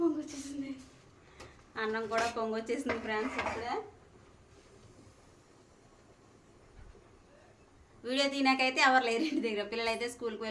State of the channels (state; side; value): identical; both; correlation 1.00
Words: పొంగొచ్చేసింది. అన్నం కూడా పొంగొచ్చేసింది ఫ్రెండ్స్. ఇప్పుడే వీడియో తీనాకైతే ఎవరు లేరు ఇంటి దగ్గర, పిల్లలు అయితే స్కూల్కి